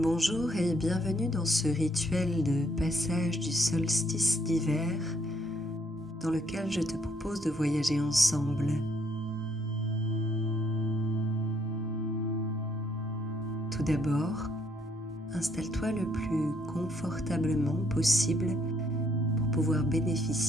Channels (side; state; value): both; normal; correlation 0.70